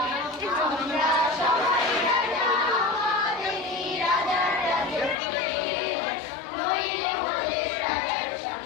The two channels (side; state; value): right; drops out; at 5.2 s